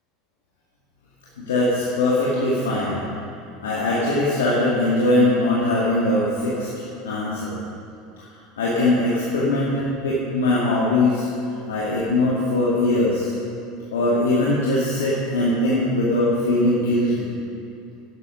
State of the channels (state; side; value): normal; both; correlation 0.22